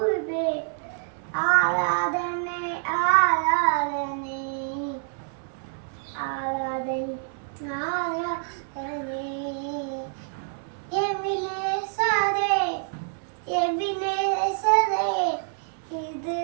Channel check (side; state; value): left; silent; 60 dB below the other